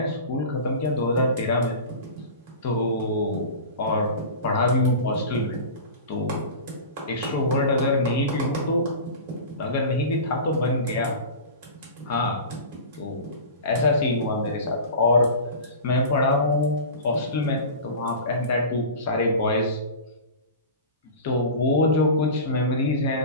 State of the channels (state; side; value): inverted; both; correlation -0.32